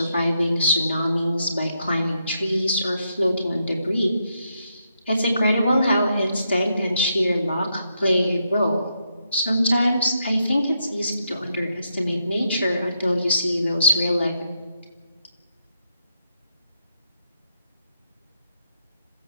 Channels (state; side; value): inverted; both; correlation -0.80